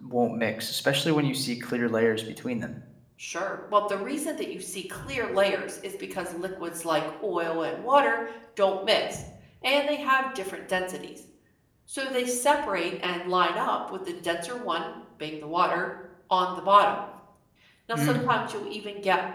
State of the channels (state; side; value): identical; both; correlation 1.00